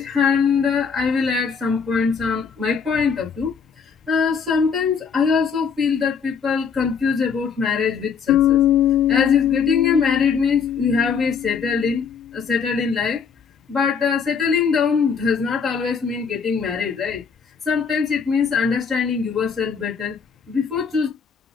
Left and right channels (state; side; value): quieter; right; 6.2 dB